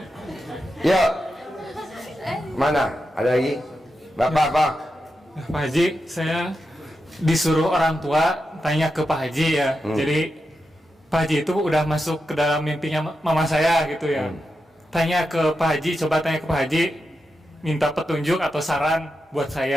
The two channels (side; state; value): both; normal; correlation 0.88